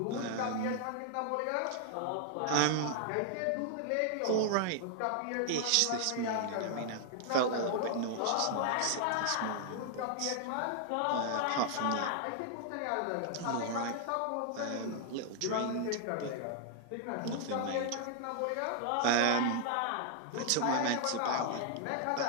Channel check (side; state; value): both; different; correlation 0.00